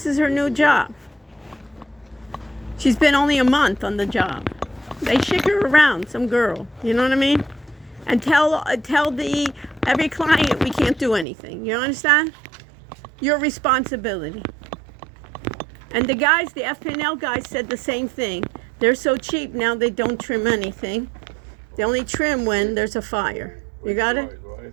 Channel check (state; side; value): drops out; left; at 11.2 s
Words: is her new job. She's been only a month on the job. They shake her around, some girl. You know what I mean? And tell every client we can't do anything. You understand? Your responsibility. And the guys, the FPNL guys said the same thing. They're so cheap now they don't trim anything. They only trim when there's a fire. You got it? Right, right?